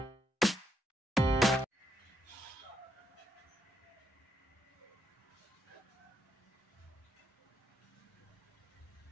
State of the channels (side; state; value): both; normal; correlation 0.79